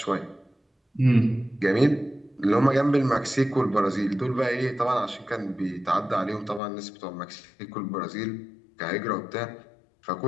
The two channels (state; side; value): drops out; right; at 6.6 s